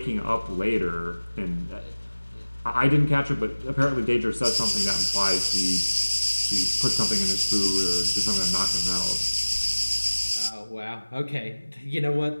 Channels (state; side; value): inverted; both; correlation -1.00